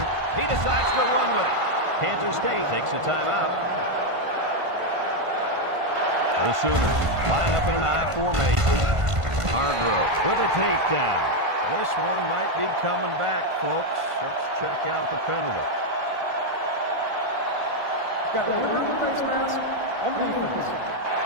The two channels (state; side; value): late; left; 1.5 ms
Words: He decides to run with it. Kansas State takes a timeout. The Sooners line up in an I formation. Hargrove with a takedown. This one might be coming back, folks. Let's check out the penalty. Got an inadvertent face mask on the defense.